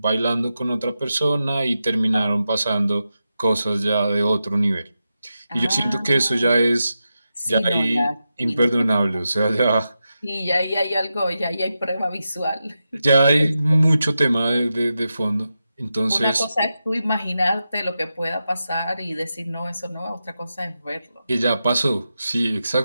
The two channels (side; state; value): both; inverted; correlation -0.90